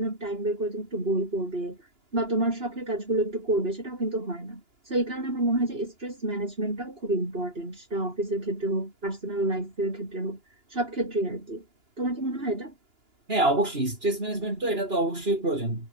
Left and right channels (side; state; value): left; late; 2.9 ms